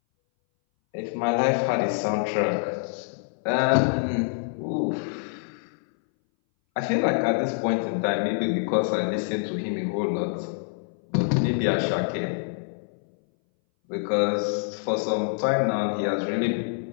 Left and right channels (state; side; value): silent; right; 60 dB below the other